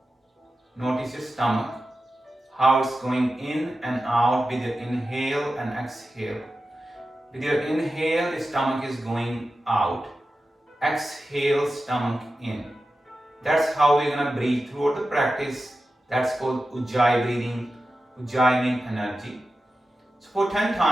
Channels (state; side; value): normal; both; correlation 0.92